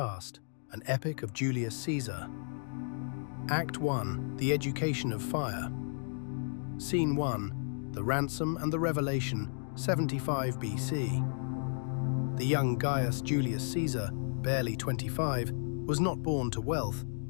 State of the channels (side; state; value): right; silent; digital silence